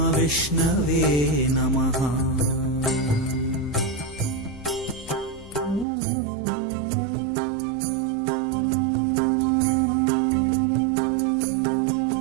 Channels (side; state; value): left; drops out; at 5.9 s